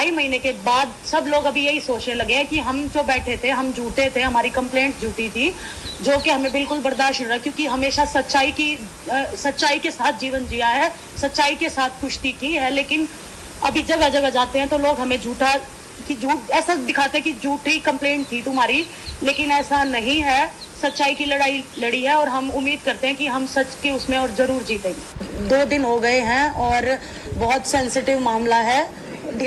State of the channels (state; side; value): identical; both; correlation 1.00